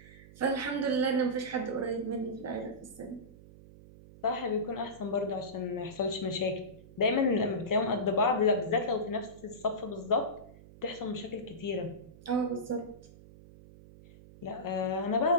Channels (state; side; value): noise; right; hum, 20 dB below the sound